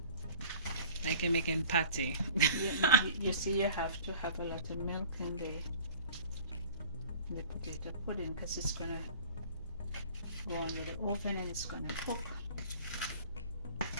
Like you're making patty. You see, you have to have a lot of milk in the potato pudding because it's gonna go on with the oven and it's gonna cook.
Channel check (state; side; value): inverted; both; correlation -0.46